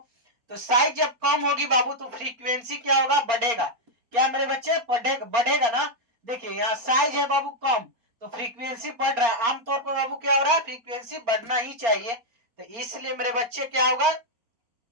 तो साइज जब कम होगी बाबू, तो फ्रीक्वेंसी क्या होगा, बढ़ेगा, क्या मेरे बच्चे बढ़ेगा ना। देखिए यहाँ साइज है बाबू कम, तो फ्रीक्वेंसी बढ़ रहा है, आमतौर पर बाबू क्या हो रहा है, फ्रीक्वेंसी बढ़ना ही चाहिए। तो इसलिए मेरे बच्चे क्या होगा,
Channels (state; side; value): late; left; 4.3 ms